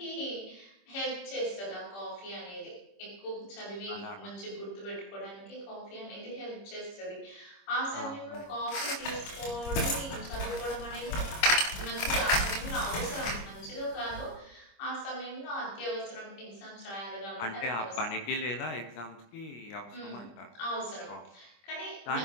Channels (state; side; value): late; right; 25 ms